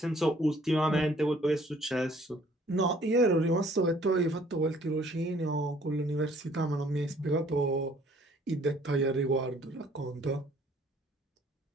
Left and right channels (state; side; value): normal; both; correlation 0.59